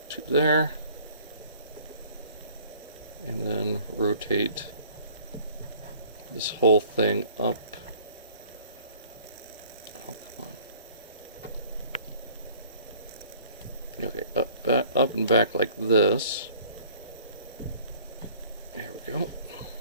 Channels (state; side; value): inverted; both; correlation -0.53